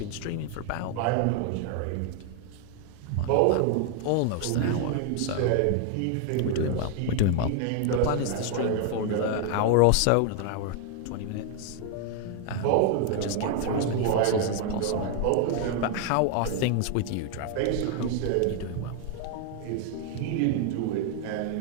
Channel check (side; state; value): both; different; correlation 0.00